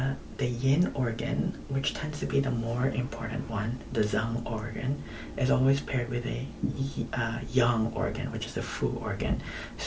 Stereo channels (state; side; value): identical; both; correlation 1.00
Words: yin organ, which tends to be the more important one, the zang organ, is always paired with a yang organ, which is the fu organ.